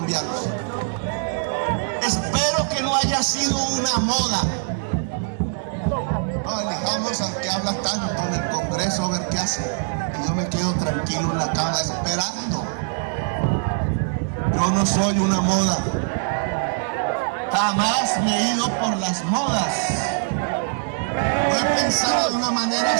Espero que no haya sido una moda. No elijamos al que habla tanto en el Congreso a ver qué hace. Y yo me quedo tranquilo en la cama esperando. Yo no soy una moda. Jamás me he ido por las modas. No he pensado de una manera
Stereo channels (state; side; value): silent; left; digital silence